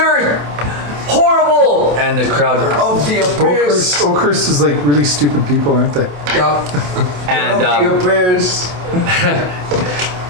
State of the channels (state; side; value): late; left; 27 ms